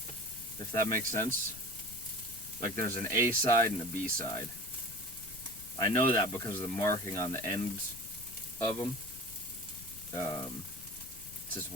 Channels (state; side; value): noise; left; rumble, 17 dB below the sound